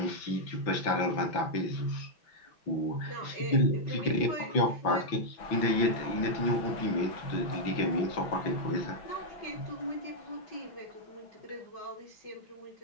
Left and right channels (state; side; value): late; right; 5.9 ms